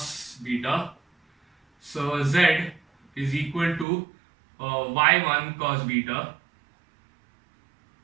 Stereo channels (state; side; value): drops out; left; at 3.9 s